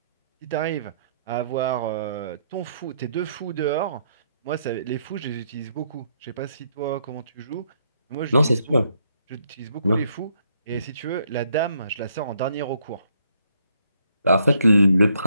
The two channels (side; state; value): both; inverted; correlation -0.72